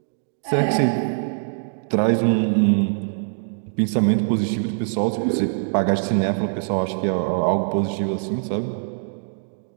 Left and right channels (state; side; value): silent; left; digital silence